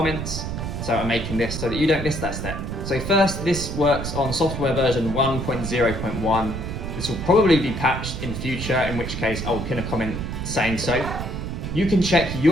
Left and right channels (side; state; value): right; noise; rumble, 5 dB below the sound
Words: So I'm making this so that you don't miss that step. So first, this works on software version 1.0.1. This will probably be patched in future, in which case I'll pin a comment saying so. You can check